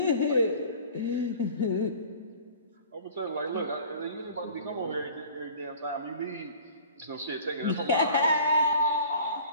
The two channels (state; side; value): inverted; both; correlation -0.46